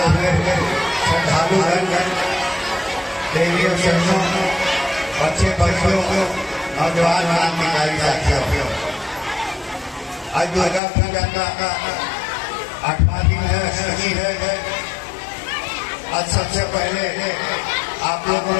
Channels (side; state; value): right; drops out; at 10.8 s